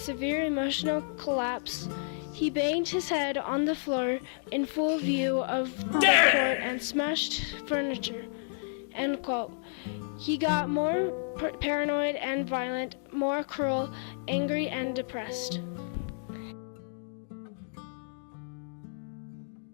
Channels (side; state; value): right; silent; digital silence